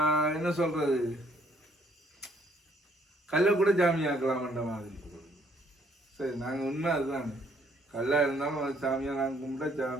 என்ன சொல்றது, கல்லை கூட ஜாமி ஆக்கலாம்ன்ற மாதிரி. சரி, நாங்கள் உண்மை அதுதான், கல்லாக இருந்தாலும் அது சாமியாக நாங்கள் கும்பிட்டா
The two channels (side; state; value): both; normal; correlation 0.66